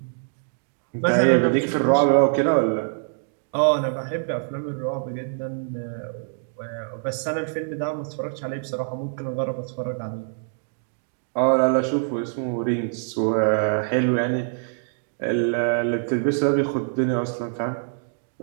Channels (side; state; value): left; silent; digital silence